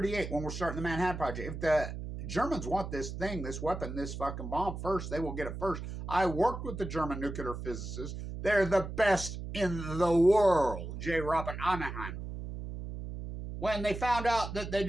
when we're starting the Manhattan Project. If the Germans want this thing, this weapon, this fucking bomb first, they will get it first. I worked with the German nuclear physicists. They're the best in the world. J. Robert Oppenheimer. When they found out that they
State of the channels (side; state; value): right; noise; hum, 7 dB below the sound